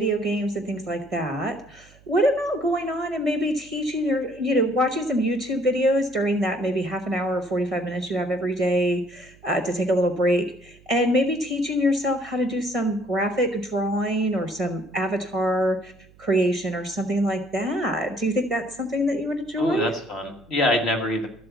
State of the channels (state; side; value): noise; right; hum, 27 dB below the sound